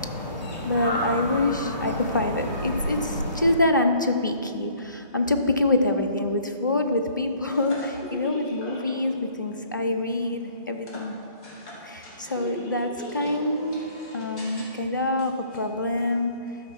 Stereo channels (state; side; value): inverted; both; correlation -0.57